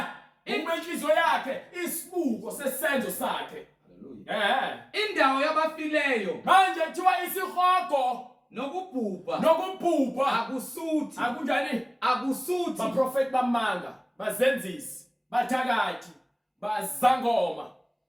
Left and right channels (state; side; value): identical; both; correlation 1.00